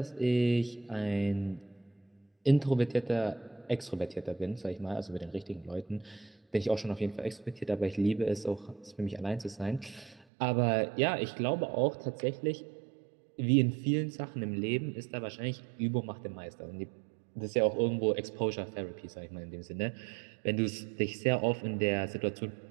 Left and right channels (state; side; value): drops out; left; at 10.2 s